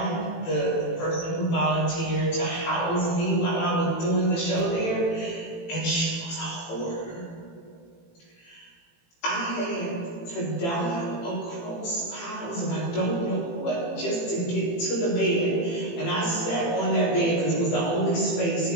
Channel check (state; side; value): late; right; 18 ms